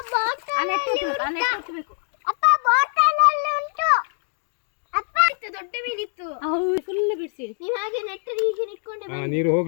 ದೊಡ್ಡ ಮೀನಿತ್ತು ಫುಲ್ ಬಿಡಿಸಿ ನೀವ್ ಹಾಗೆ ನೆಟ್ಟ ಹೀಗೆ ನಿಟ್ಕೊಂಡೆ ನೀರು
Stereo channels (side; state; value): right; silent; 56 dB below the other